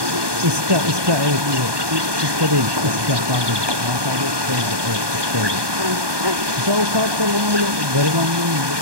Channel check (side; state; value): left; late; 1.2 ms